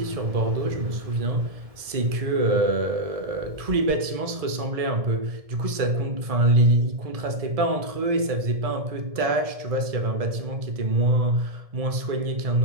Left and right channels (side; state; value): left; late; 1.7 ms